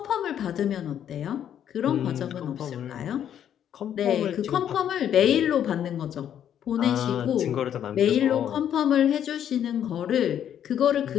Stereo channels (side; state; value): right; quieter; 9.8 dB